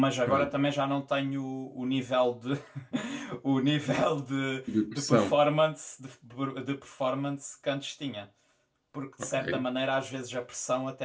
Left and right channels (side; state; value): both; identical; correlation 1.00